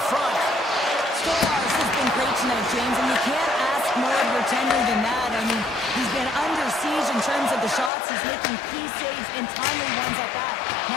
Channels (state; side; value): drops out; right; at 7.9 s